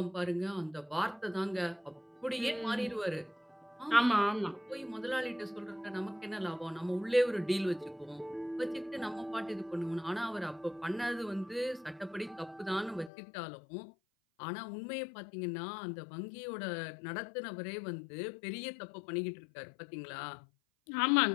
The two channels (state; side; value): drops out; right; at 13.1 s